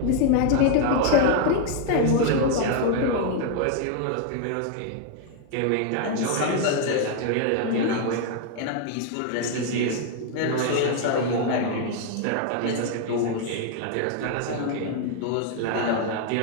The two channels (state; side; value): different; both; correlation 0.00